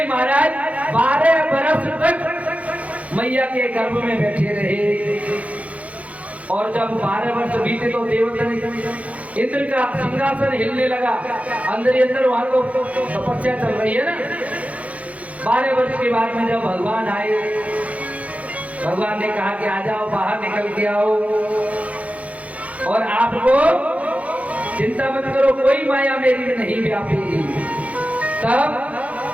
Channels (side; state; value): left; late; 0.067 ms